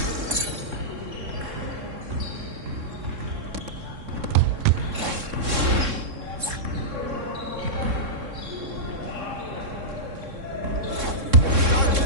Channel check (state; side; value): late; left; 3.6 ms